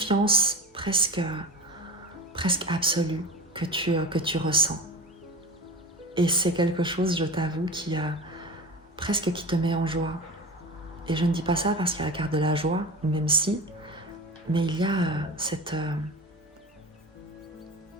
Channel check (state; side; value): normal; both; correlation 0.29